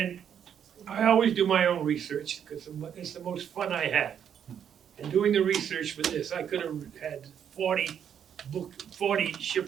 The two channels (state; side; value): quieter; left; 8.6 dB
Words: I always do my own research because it's the most fun I had. And doing the research for this, I could have had 40